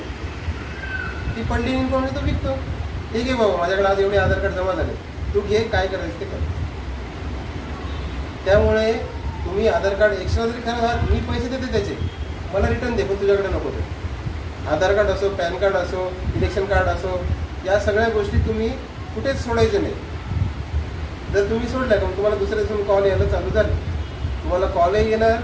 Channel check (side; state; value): both; identical; correlation 1.00